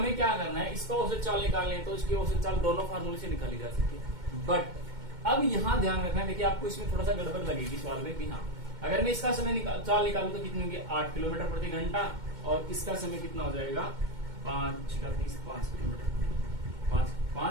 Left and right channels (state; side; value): late; left; 2.2 ms